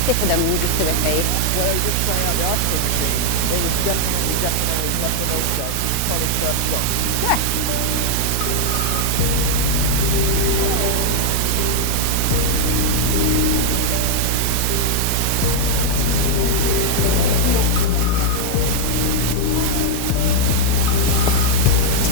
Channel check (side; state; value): both; different; correlation 0.00